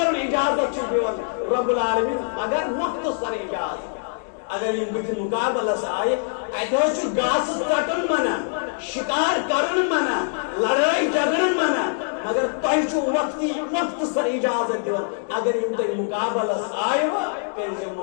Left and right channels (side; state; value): right; silent; 63 dB below the other